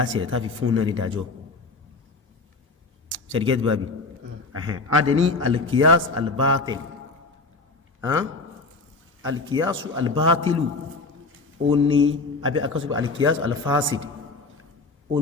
rẹ̀ táà fi fún náà ní dájọ́ sẹ́dígẹ́tì bábí adẹni alkiyas albatil alkiyasu albatilu ó ní àbí akásùgbà alkiyas alfasid ó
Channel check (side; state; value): right; quieter; 3.7 dB